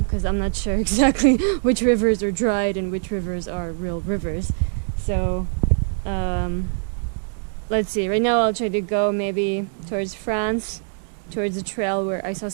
I'm not sure exactly which rivers are dried and which rivers are real rivers. So let's see. Right now I'll try to go maybe towards France, towards a trail where I saw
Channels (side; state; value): left; silent; 64 dB below the other